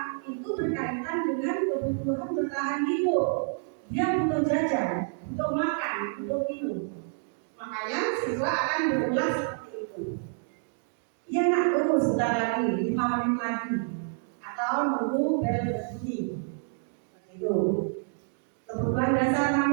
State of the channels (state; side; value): silent; left; 59 dB below the other